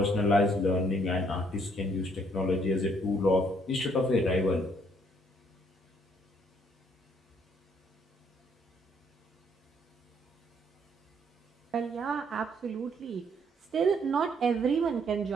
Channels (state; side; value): normal; both; correlation 0.67